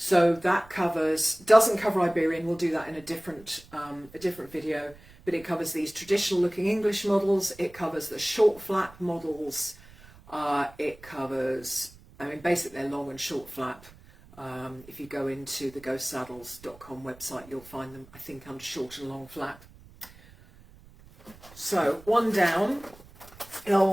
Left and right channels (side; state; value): right; noise; rumble, 23 dB below the sound